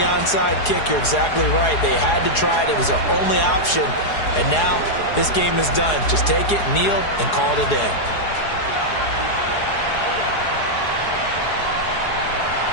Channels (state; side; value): late; right; 4.8 ms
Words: onside kick. You're exactly right. They had to try it. It was their only option. And now this game is done. Just take it, kneel, and call it a day.